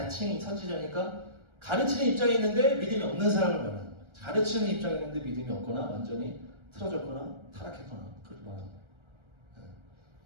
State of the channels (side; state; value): left; late; 1.3 ms